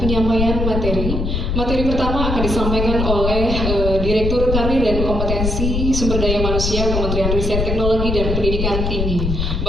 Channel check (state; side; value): noise; left; rumble, 1 dB below the sound